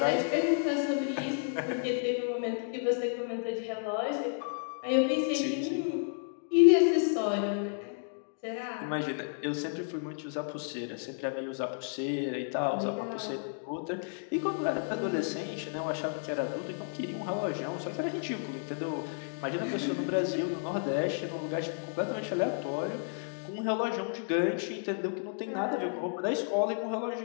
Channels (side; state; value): right; silent; digital silence